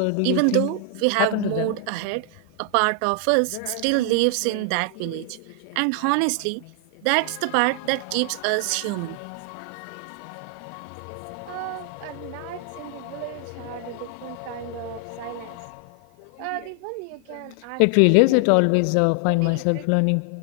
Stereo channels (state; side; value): different; both; correlation 0.00